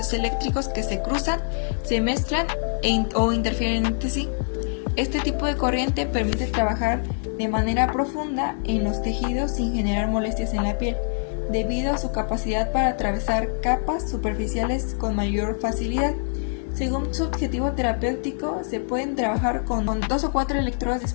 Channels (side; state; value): right; silent; 56 dB below the other